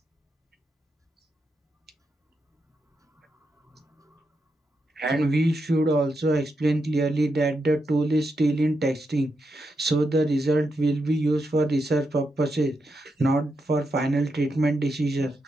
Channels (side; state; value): both; normal; correlation 0.85